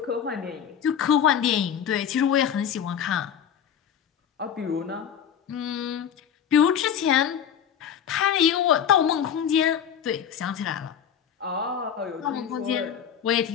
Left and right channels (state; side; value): quieter; right; 8.6 dB